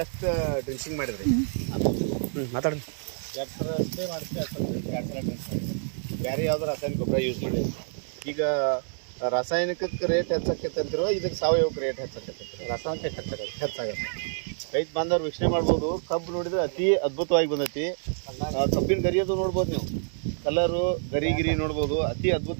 ಎಷ್ಟು ಡ್ರಿಂಚಿಂಗ್ ಮಾಡಿದ್ರಿ? ಅದು ಮಾತಾಡಿ. 2 ಸಲ ಸ್ಪ್ರೇ ಮಾಡಿಸಿ, 2 ಸಲ ಡ್ರಿಂಚ್ ಮಾಡಿದ್ರಿ. ಬೇರೆ ಯಾವ್ದು ರಾಸಾಯನಿಕ ಗೊಬ್ಬರ ಯೂಸ್ ಮಾಡಿದ್ರಿ? ಈಗ ರಾಸಾಯನಿಕಕ್ಕೆ ರೇಟ್ ಹೆಚ್ಚಾಕೈತಿರೋ ಇದಕ್ಕೆ ಸಾವಯವಕ್ಕೆ ರೇಟ್ ಹೆಚ್ಚಾಕೈತಿ? ರಾಸಾಯನಿಕ ಹೆಚ್ಚಾಗತ್ತೆ. ರೈತ ಬಾಂಧವ್ರು ವೀಕ್ಷಣೆ ಮಾಡ್ಬೋದು. ಕಬ್ಬು ನೋಡಿದ್ರೆ ಅತಿ ಅದ್ಭುತವಾಗಿ ಬಂದೈತಿ. ಕಬ್ಬಿನ ಗರಿಯೋದು ನೋಡ್ಬೋದು ನೀವು, ಕಲರು ಗರಿ ನೋಡ್ಬೋದು, ಅತಿ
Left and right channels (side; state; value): left; silent; digital silence